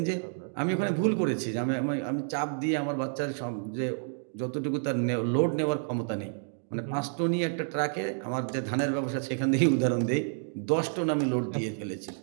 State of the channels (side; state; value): left; silent; digital silence